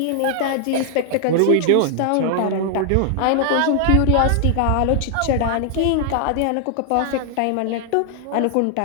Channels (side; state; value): both; different; correlation 0.00